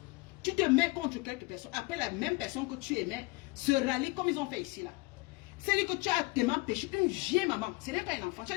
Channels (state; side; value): quieter; right; 24.6 dB